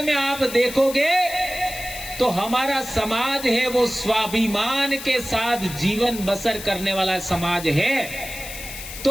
में आप देखोगे तो हमारा समाज है वो स्वाभिमान के साथ जीवन बसर करने वाला समाज है।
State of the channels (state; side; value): noise; left; hiss, 11 dB below the sound